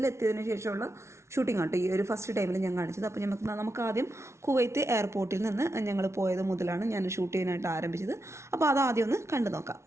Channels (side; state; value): left; late; 0.13 ms